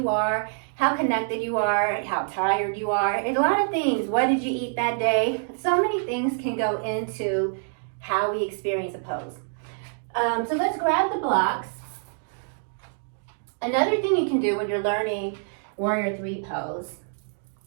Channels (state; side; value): silent; left; digital silence